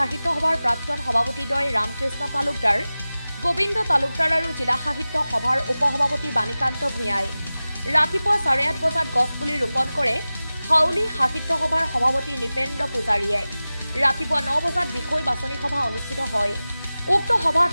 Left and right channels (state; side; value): inverted; both; correlation -0.97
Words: সভাৰ প্ৰাক্তন সভাপতিদ্বয় ৰামকৃষ্ণ তালুকদাৰ, গোবিন্দ তালুকদাৰ আৰু জিলা সাহিত্য সভাৰ উপসভাপতি বাণীকান্ত ভূঞাই। ৰাতিপুৱা 8:30 বজাত গছপুলি ৰোপণ কৰে হাউলি সাহিত্য সভাৰ সভাপতি নিপেন্দ্ৰ পূজাৰীয়ে। ৰাতিপুৱা 9 বজাত বিষয় বাছনি সভা অনুষ্ঠিত হয়। উক্ত সভাত